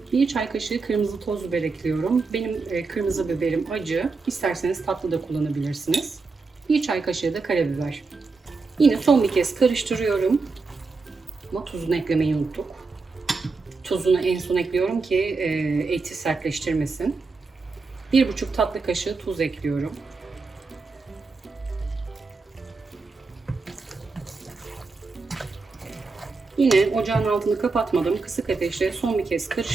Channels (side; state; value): left; quieter; 4.2 dB